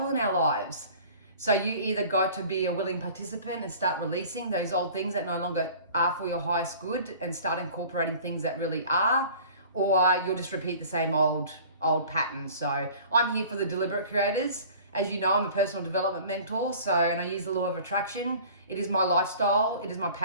in our lives. So you either got to be a willing participant and start releasing those old things that no longer are for your highest good and start incorporating things that really are, or you'll just repeat the same old patterns. So I'm here for the deliberate creators. As you know, I'm a personal development mentor. And I use the law of attraction. It is my lifestyle. It is my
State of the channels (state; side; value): inverted; both; correlation -0.45